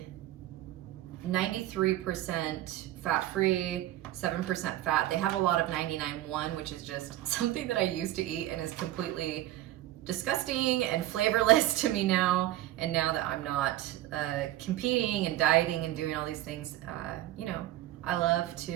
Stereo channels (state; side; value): quieter; left; 14.6 dB